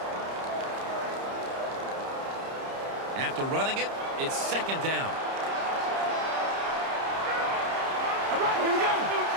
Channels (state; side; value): late; left; 30 ms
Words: After running it, it's second down. All right, here we go.